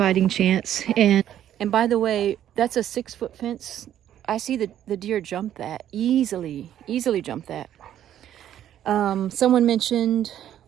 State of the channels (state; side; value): quieter; left; 11.0 dB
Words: chance. And by the way, that's a 6-foot fence. I see the deer jump that easily jump that. Someone mentioned,